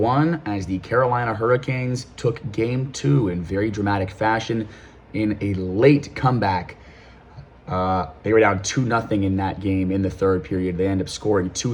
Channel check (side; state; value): both; identical; correlation 1.00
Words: as the Carolina Hurricanes took Game 2 in very dramatic fashion in a late comeback. They were down 2-0 in that game in the third period. They end up scoring